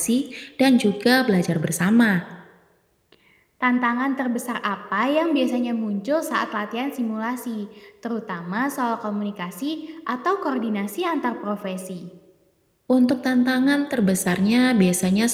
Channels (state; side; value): identical; both; correlation 1.00